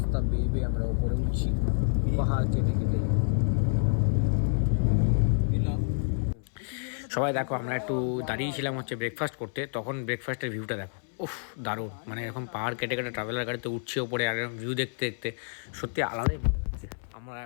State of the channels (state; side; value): silent; right; 59 dB below the other